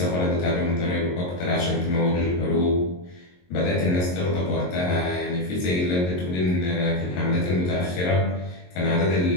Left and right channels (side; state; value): right; late; 22 ms